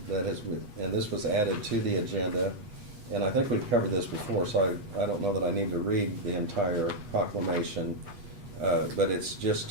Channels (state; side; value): late; left; 8.3 ms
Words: that has, and this was added to the agenda, and I think we've covered this before, so I don't know that I need to read the entire proclamation, but it's just